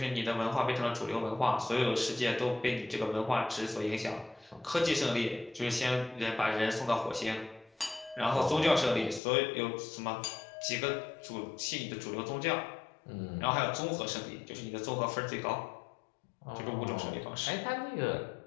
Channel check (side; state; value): right; drops out; at 9.2 s